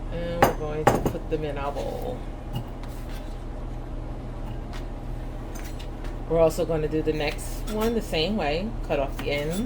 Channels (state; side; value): identical; both; correlation 1.00